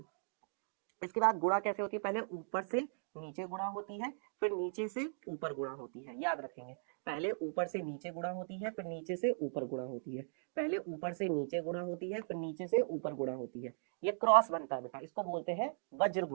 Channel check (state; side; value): silent; left; digital silence